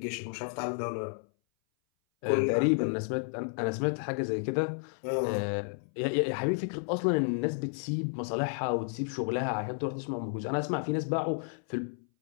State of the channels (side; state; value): right; silent; 57 dB below the other